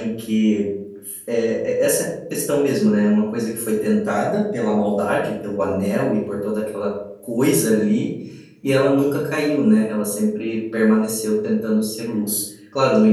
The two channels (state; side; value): identical; both; correlation 1.00